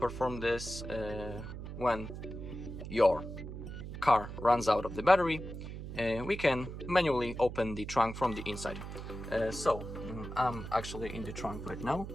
this when your car runs out of the battery. We can manually open the trunk from the inside. I'm actually in the trunk right now.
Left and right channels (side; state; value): right; noise; hum, 9 dB below the sound